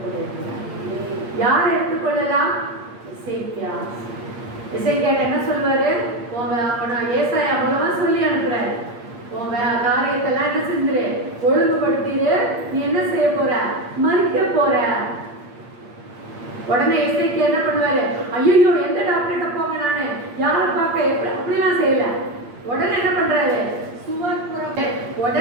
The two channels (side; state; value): left; late; 8.6 ms